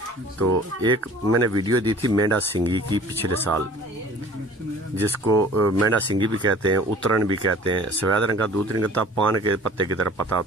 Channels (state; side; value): normal; both; correlation 0.47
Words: تو ایک میں نے ویڈیو دی تھی مینڈا سنگھی کی پچھلے سال، جس کو مینڈا سنگھی بھی کہتے ہیں، اترن بھی کہتے ہیں، سفید رنگ کا دودھ نہیں کرتا، پان کے پتے کی طرح پتا